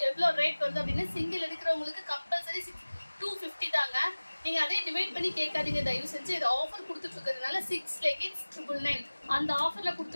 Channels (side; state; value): both; inverted; correlation -1.00